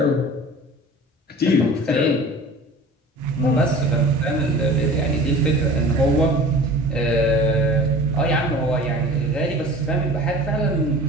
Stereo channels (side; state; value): both; normal; correlation 0.42